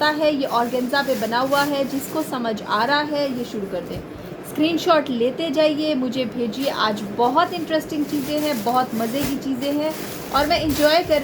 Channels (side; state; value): both; identical; correlation 1.00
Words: है, ये ऑर्गेन्जा पे बना हुआ है, जिसको समझ आ रहा है ये शुरू कर दें। स्क्रीनशॉट लेते जाइए, मुझे भेजिए। आज बहुत इंटरेस्टिंग चीज़ें हैं, बहुत मज़े की चीज़ें हैं और मैं इंजॉय कर